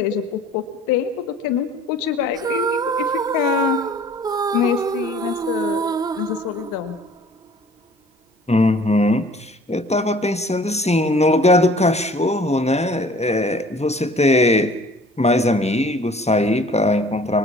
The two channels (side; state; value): both; normal; correlation 0.51